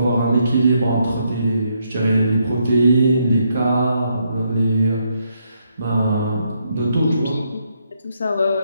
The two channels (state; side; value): inverted; both; correlation -0.76